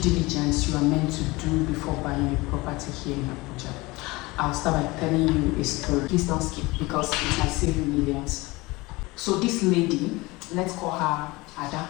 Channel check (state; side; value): quieter; right; 22.5 dB